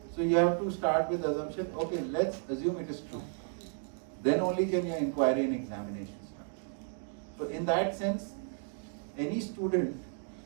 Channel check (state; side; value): silent; left; 55 dB below the other